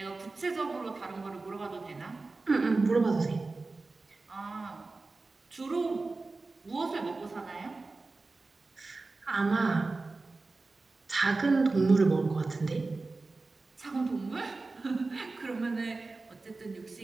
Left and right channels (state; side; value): quieter; left; 3.6 dB